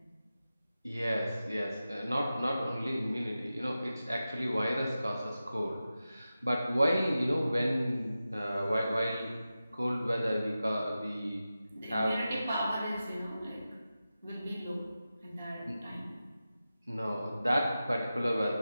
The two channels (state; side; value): inverted; both; correlation -0.93